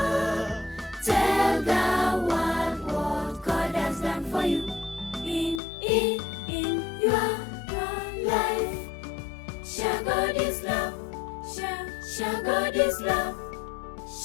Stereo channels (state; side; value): drops out; right; at 5.6 s